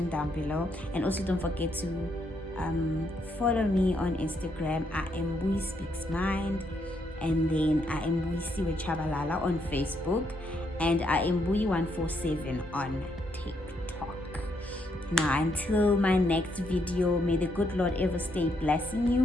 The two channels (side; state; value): both; normal; correlation 0.76